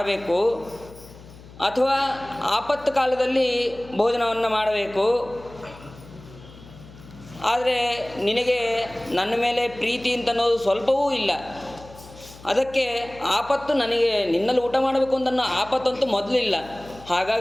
ಅಥವಾ ಆಪತ್ತು ಕಾಲದಲ್ಲಿ ಭೋಜನವನ್ನು ಮಾಡಬೇಕು. ಆದರೆ ನಿನಗೆ ನನ್ನ ಮೇಲೆ ಪ್ರೀತಿ ಅಂತ ಅನ್ನೋದು ಸ್ವಲ್ಪವೂ ಇಲ್ಲ. ಅದಕ್ಕೆ ಆಪತ್ತು ನನಗೆ ನಿನ್ನಲ್ಲಿ ಊಟ ಮಾಡಬೇಕು ಅಂತ ಅನ್ನೋ ಆಪತ್ತಂತೂ ಮೊದಲಿಲ್ಲ,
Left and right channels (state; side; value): noise; left; hum, 19 dB below the sound